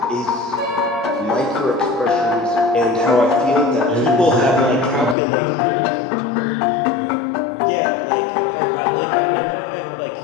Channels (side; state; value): right; drops out; at 5.2 s